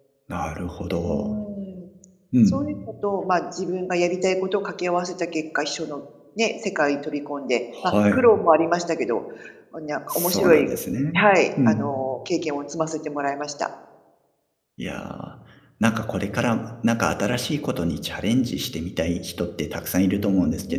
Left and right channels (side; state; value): both; identical; correlation 1.00